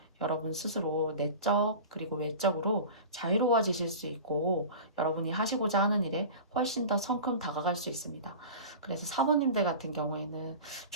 여러분 스스로 내적 그리고 외적으로 자유로워지실 수 있고 여러분이 하시고자 하는 일에 훨씬 더 성큼 다가갈 수 있습니다. 그래서 사모님들 같은 경우에는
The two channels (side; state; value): both; inverted; correlation -0.35